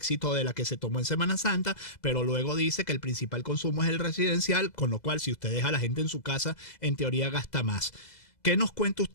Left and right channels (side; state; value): right; late; 2.0 ms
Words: de la que se tomó en Semana Santa, pero luego dice que el principal consumo es el residencial, con lo cual si usted deja a la gente en su casa, en teoría gasta más. ¿Qué nos cuenta